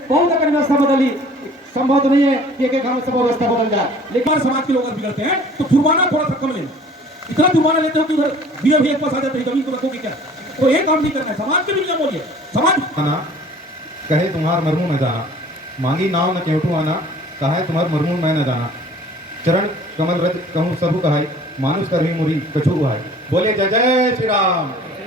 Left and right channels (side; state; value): both; normal; correlation 0.50